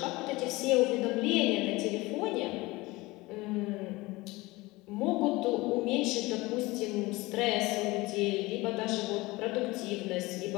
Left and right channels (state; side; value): quieter; right; 21.4 dB